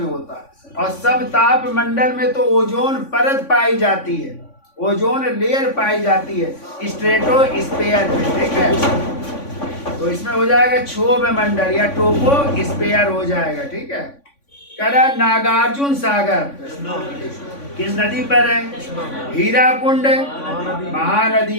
होता है। और सब ताप मंडल में तो ओजोन परत पाई जाती है, ओजोन लेयर पाई जाती है स्ट्रेटोस्फीयर में, ठीक है। तो इसमें हो जाएगा क्षोभ मंडल या ट्रोपोस्फियर हो जाएगा, ठीक है। करा नागार्जुन सागर किस नदी पर है? हीराकुंड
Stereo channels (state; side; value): late; right; 3.5 ms